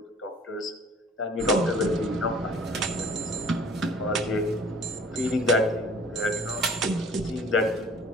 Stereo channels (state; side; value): normal; both; correlation 0.51